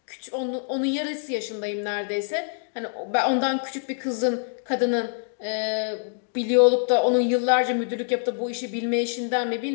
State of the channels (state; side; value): silent; right; digital silence